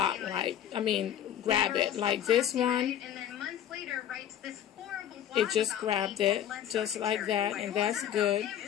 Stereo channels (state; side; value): quieter; right; 10.4 dB